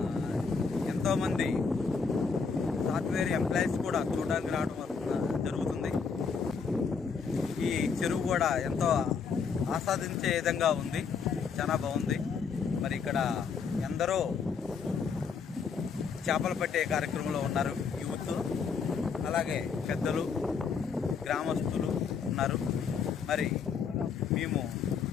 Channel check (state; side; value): quieter; right; 5.7 dB